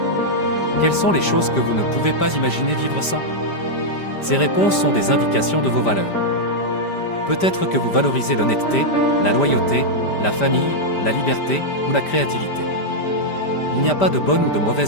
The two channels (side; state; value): right; late; 5.1 ms